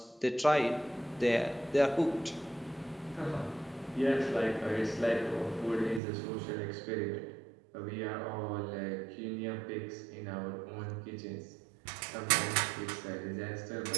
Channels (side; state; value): left; drops out; at 6.0 s